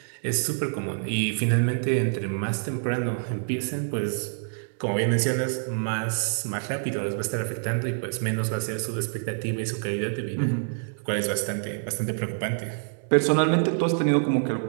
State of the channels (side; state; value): left; silent; digital silence